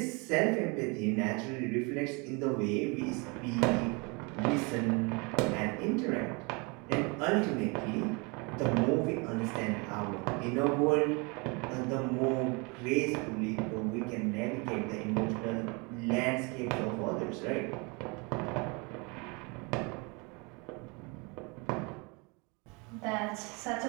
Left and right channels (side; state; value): left; quieter; 29.8 dB